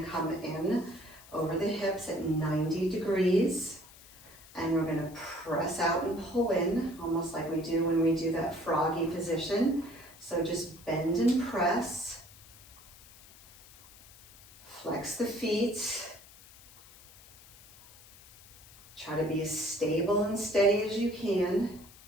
come in over the hips at 90 degrees. And we're gonna press out and pull in, almost like we do when we do that froggy position. So just bend and press. Flex the feet. Try to be as stable and steady as you can.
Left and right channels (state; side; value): noise; left; hiss, 22 dB below the sound